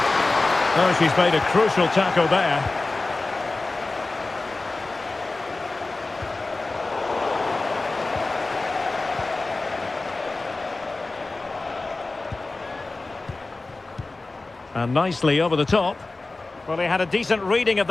Oh, she's made a crucial tackle there. And nicely over the top. Well, he had a decent reading of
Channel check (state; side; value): quieter; right; 3.3 dB